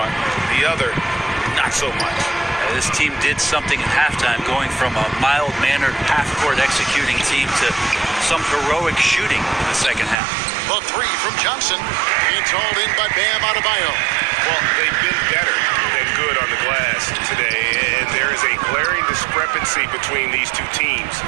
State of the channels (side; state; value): left; drops out; at 10.2 s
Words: the other not so much. This team did something at halftime, going from a mild-mannered half-court executing team to some heroic shooting in the second half. The three from Johnson. It's hauled in by Bam Adebayo. Well, they've been better than good on the glass today, and there is a glaring discrepancy between these two teams